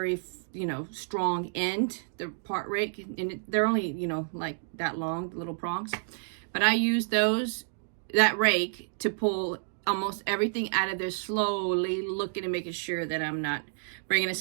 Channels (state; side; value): silent; left; digital silence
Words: strong end, the part rake, and they're only, like that long, the little prongs. But I used that rake to pull almost everything out of there, slowly looking and making sure that I'm not bringing a